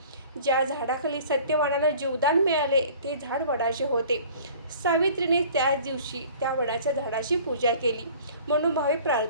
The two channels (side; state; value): both; inverted; correlation -0.48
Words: ज्या झाडाखाली सत्यवानाला जीवदान मिळाले ते झाड वडाचे होते. सावित्रीने त्याच दिवशी त्या वडाच्या झाडाची पूजा केली, मनोभावे